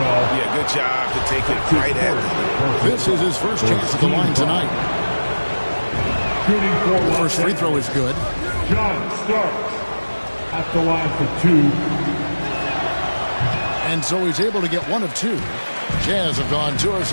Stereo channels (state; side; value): inverted; both; correlation -1.00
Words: good job to take it right at him. This is his first chance at the line tonight. The first free throw is good. John Starks at the line for 2. And so he's able to get 1 of 2. Jazz have gone 2 of